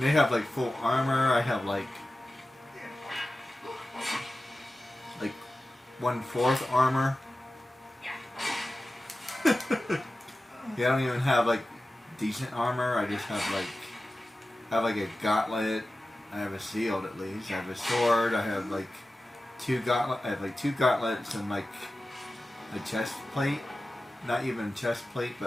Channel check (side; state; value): both; normal; correlation 0.95